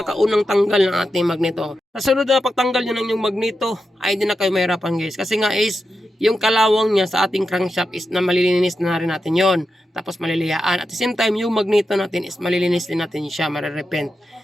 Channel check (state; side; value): normal; both; correlation 0.88